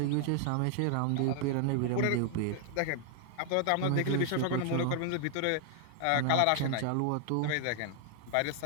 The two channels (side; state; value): both; different; correlation 0.00